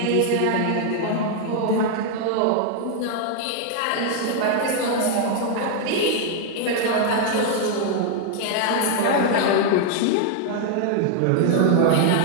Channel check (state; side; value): different; both; correlation 0.00